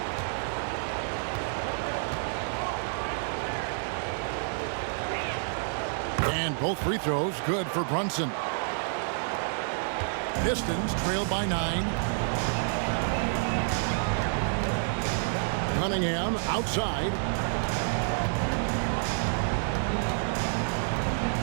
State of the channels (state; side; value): silent; left; digital silence